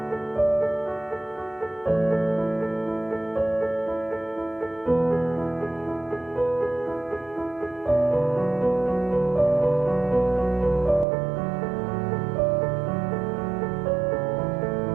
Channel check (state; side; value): drops out; left; at 11.1 s